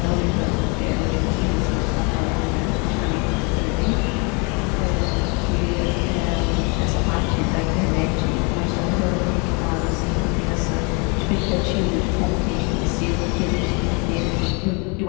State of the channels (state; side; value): quieter; right; 32.2 dB